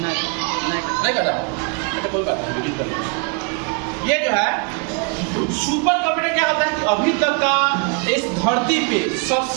कटा, अच्छा कोई बात नहीं, वीडियो कर। ये जो है सुपर कंप्यूटर क्या होता है, अभी तक का इस धरती पे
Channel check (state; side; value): quieter; left; 35.2 dB